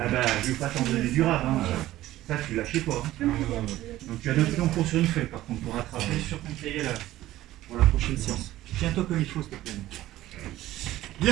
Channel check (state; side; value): quieter; left; 15.1 dB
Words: bah, je vais pas t'en donner du rare. Hein. Ça, tu lâches pas. Hein. Donc tu as noté ton cours sur une feuille, par contre, pour rattraper sur ton cahier là, pour la prochaine séance. Tiens-toi comme il faut, s'il te plaît.